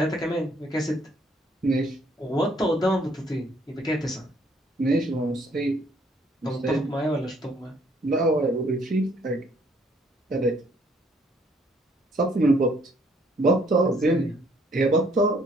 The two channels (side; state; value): both; normal; correlation 0.65